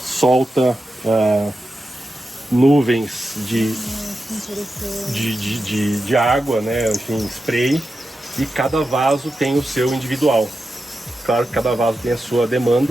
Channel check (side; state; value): both; normal; correlation 0.90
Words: solta nuvens de água, né? Enfim, spray, e cada vaso tem o seu individual. Claro que cada vaso tem a sua